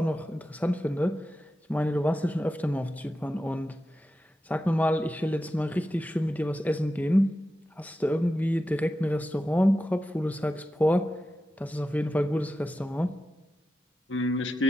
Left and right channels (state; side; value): normal; both; correlation 0.91